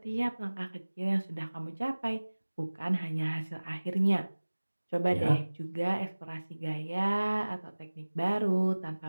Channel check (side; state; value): both; inverted; correlation -1.00